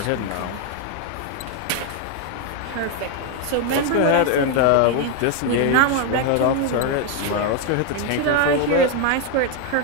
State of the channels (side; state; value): both; different; correlation 0.01